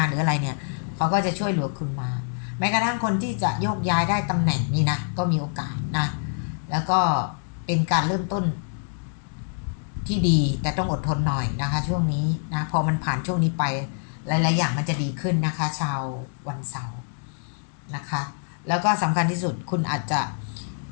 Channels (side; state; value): right; silent; digital silence